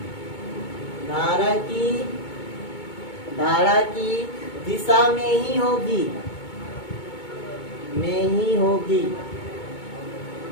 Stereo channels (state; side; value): late; right; 2.2 ms